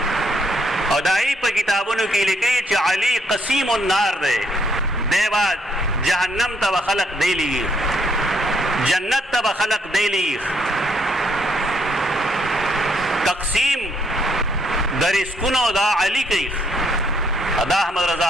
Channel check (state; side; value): normal; both; correlation 0.71